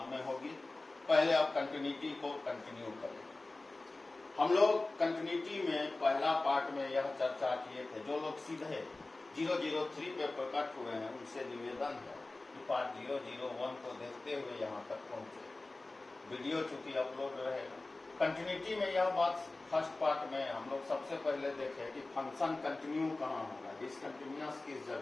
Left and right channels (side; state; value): right; quieter; 3.1 dB